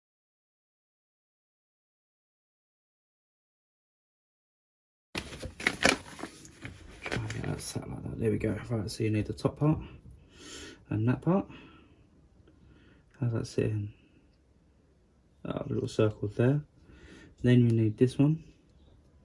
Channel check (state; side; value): identical; both; correlation 1.00